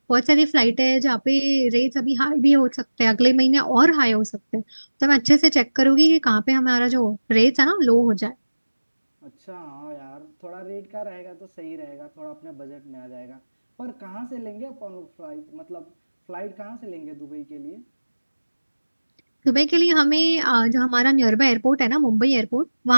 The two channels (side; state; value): both; inverted; correlation -1.00